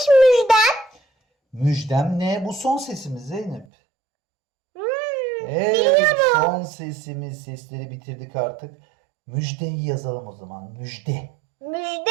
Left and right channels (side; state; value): left; drops out; at 3.7 s